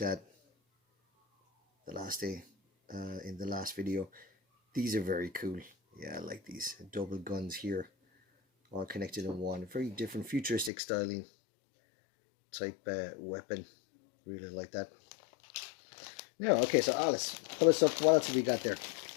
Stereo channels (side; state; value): right; drops out; at 10.7 s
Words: at the last day in the last video. These are very cool. Yeah, I like these double guns here all connected in one. Very different futuristic styling type weapon. Really like that. Now, okay, so Alice, pull us up. What else have we got there?